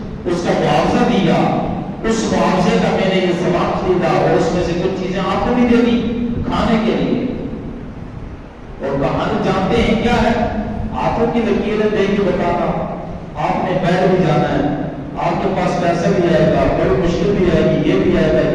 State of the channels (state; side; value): identical; both; correlation 1.00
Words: اس کا معاوضہ دیا، اس معاوضے کا میں نے یہ سامان خریدا اور اس میں سے کچھ چیزیں آپ کو بھی دے دی کھانے کے لیے۔ اور کہانی جانتے ہیں کیا ہے؟ آنکھوں کی لکیریں دے کے بتاتا، آپ نے بیٹھ بھی جانا ہے، آپ کے پاس پیسہ بھی آئے گا، بڑی مشکل بھی آئے گی، یہ بھی آئے گا،